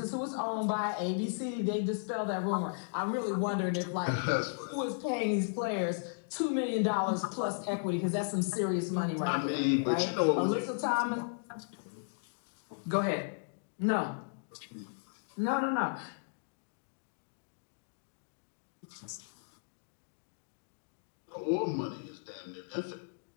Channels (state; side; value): silent; right; digital silence